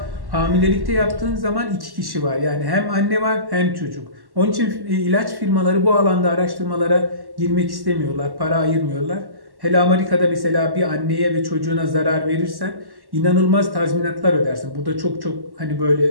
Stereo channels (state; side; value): late; left; 1.1 ms